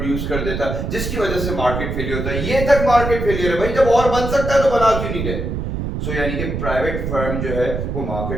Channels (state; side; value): noise; right; rumble, 3 dB below the sound